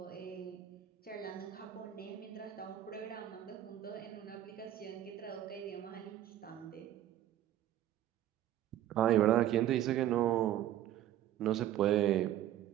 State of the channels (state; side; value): quieter; left; 12.4 dB